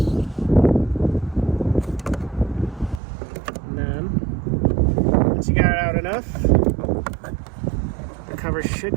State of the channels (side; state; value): left; drops out; at 3.0 s